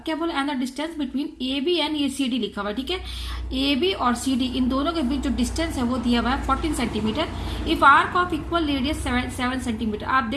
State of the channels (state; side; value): identical; both; correlation 1.00